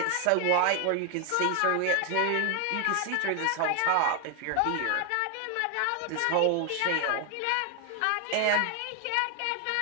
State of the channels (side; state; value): both; different; correlation 0.01